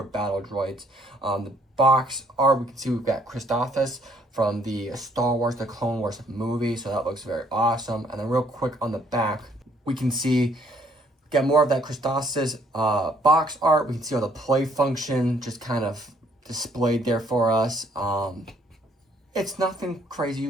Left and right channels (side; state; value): both; normal; correlation 0.65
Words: battle droids. The box art, we can see we've got Christophas from the Star Wars, the Clone Wars movie, so that looks very awesome. And then real quick on the back, we can see, get more of that Christophas box art. We can see all the play function just kind of displayed there for us. It's nothing crazy